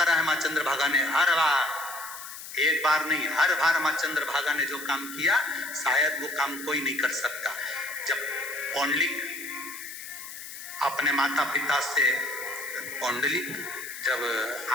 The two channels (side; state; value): left; noise; hiss, 12 dB below the sound